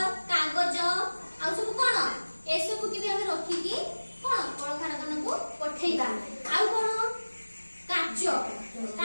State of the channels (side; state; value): both; inverted; correlation -1.00